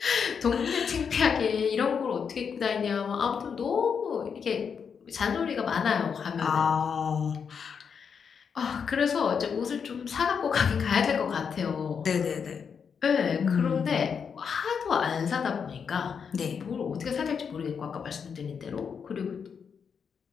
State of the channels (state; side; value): quieter; right; 6.6 dB